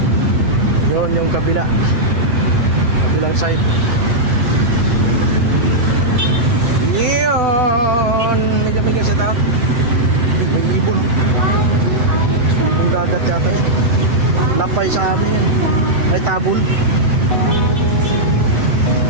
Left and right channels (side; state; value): left; late; 7.9 ms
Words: Yun yung kabilang side. Yun, may kami sit out. May ibon. Yung dagat yata yun. Lapay sa amin yun. Ay tabon.